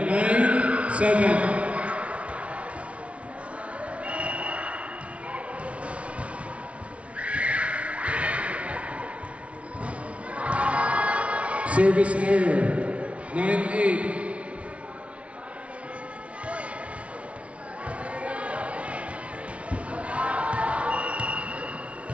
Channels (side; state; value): left; late; 0.063 ms